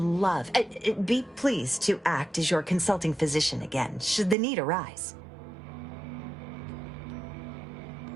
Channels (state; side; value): drops out; left; at 4.4 s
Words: be pleased to act as your consulting physician again, should the need arise.